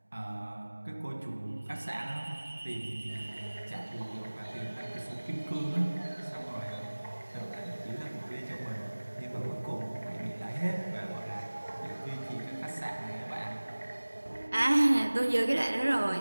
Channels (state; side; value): inverted; both; correlation -1.00